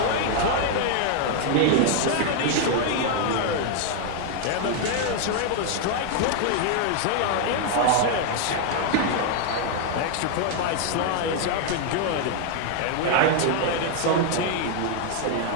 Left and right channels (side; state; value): both; different; correlation 0.00